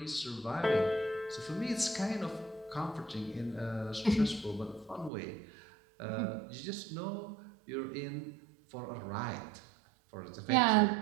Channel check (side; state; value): left; drops out; at 5.1 s